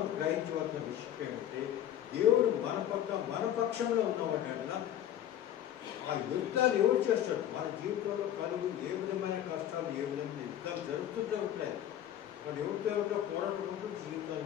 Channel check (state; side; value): quieter; right; 11.2 dB